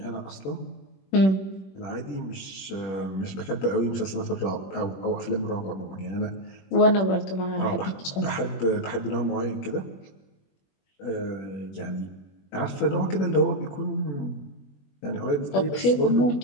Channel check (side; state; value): right; late; 21 ms